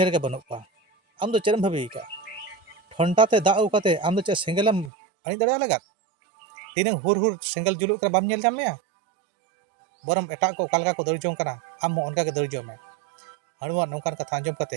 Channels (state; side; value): drops out; left; at 4.9 s